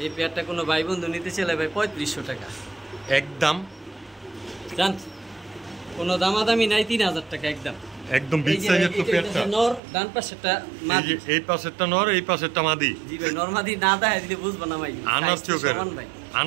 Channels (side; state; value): left; drops out; at 9.8 s